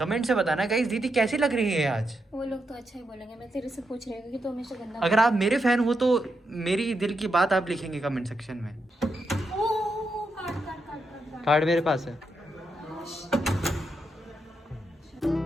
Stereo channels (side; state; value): both; normal; correlation 0.83